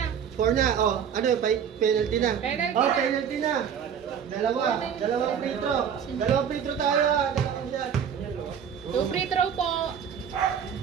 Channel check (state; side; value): quieter; left; 7.9 dB